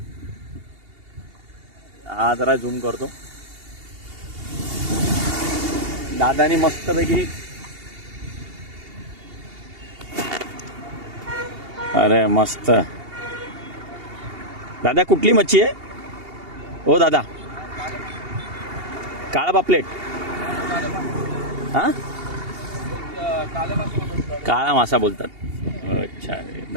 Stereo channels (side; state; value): left; late; 2.8 ms